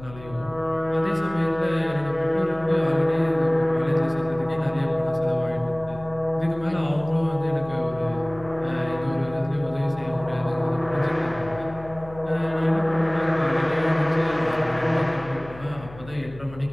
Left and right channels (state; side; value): noise; left; hum, 17 dB below the sound